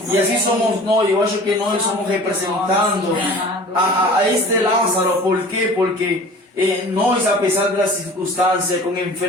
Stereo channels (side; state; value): both; normal; correlation 0.43